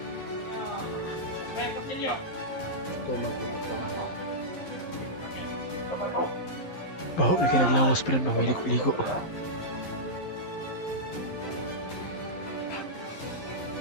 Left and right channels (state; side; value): late; right; 11 ms